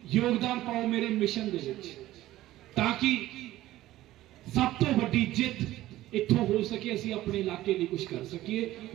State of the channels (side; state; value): left; quieter; 15.5 dB